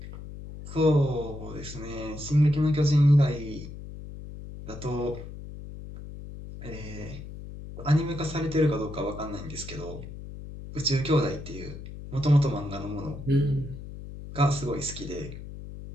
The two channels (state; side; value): noise; left; hum, 12 dB below the sound